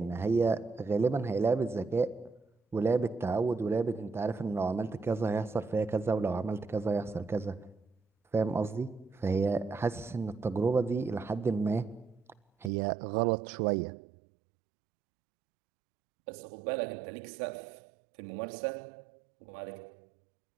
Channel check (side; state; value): left; drops out; at 12.7 s